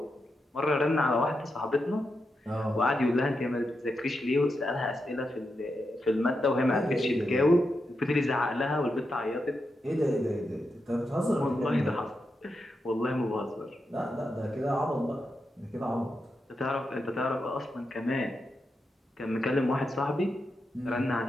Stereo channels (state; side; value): normal; both; correlation 0.86